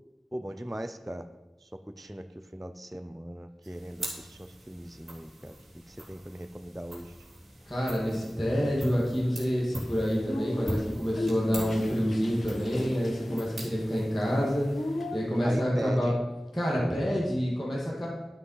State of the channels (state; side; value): normal; both; correlation 0.96